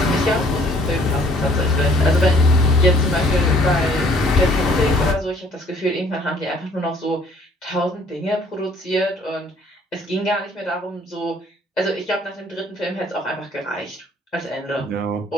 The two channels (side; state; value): both; normal; correlation 0.59